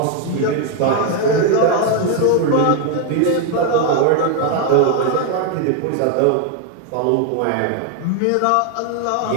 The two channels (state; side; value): different; both; correlation 0.01